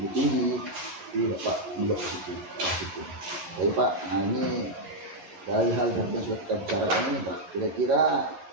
tinggi. Jadi Bapak melihat ke situ. Jadi Pak, nah ini dari hal yang sudah kita bicarakan ini Pak, kira-kira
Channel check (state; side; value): late; left; 11 ms